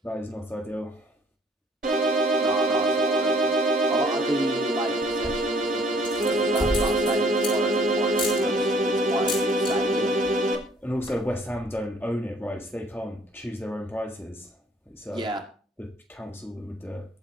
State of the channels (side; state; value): both; normal; correlation 0.59